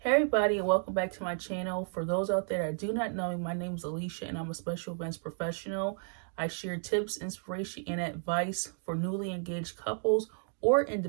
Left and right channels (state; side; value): silent; left; 56 dB below the other